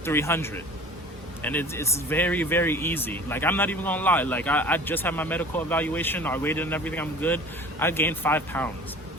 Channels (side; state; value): both; normal; correlation 0.44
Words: 300. And it's very, very easy. Like, I'm not even gonna lie. Like, I just had my medical evaluation, I weighed and everything, I'm good. I gained 5 pounds.